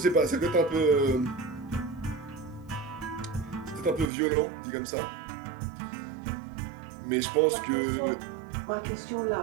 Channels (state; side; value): drops out; left; at 4.1 s